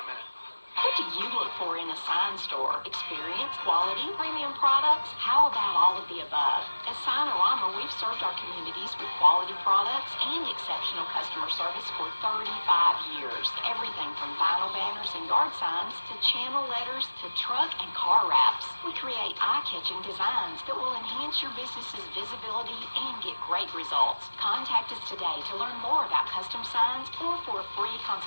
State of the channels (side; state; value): both; inverted; correlation -1.00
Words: a minute. What do you look for in a sign store? Experience, quality, premium products? How about all of the above? At Signorama, we've served our communities with quality products and exceptional customer service for 35 years. Everything from vinyl banners and and yard signs to channel letters to truck and car wraps. We create eye-catching designs that will enhance your business's visibility and get great results. Contact us today to learn more about custom signs or for a free